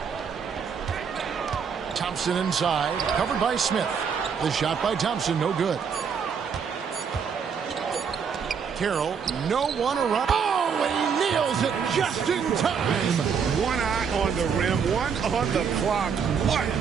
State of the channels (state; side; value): quieter; left; 6.6 dB